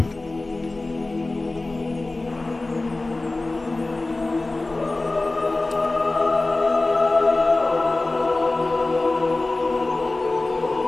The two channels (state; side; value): quieter; right; 3.1 dB